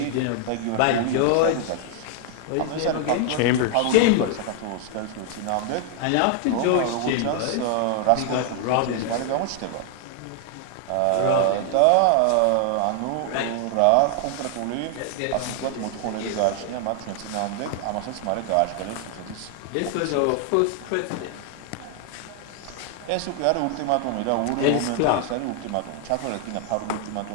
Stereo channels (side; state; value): both; different; correlation 0.00